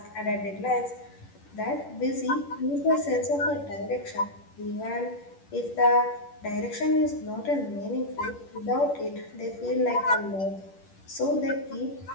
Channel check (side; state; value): right; late; 10 ms